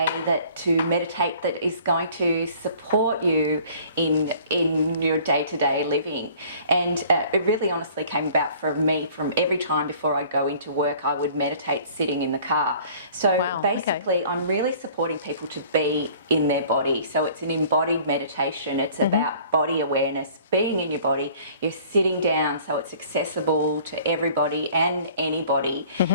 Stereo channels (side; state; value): both; inverted; correlation -0.51